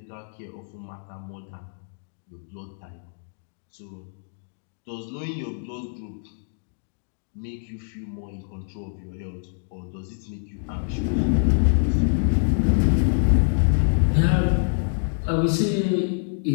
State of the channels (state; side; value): silent; right; digital silence